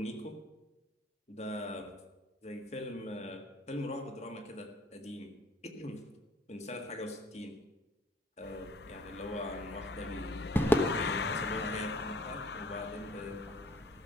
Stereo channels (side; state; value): both; normal; correlation 0.56